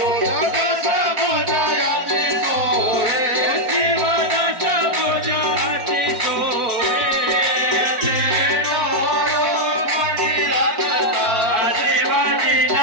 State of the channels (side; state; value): left; late; 4.5 ms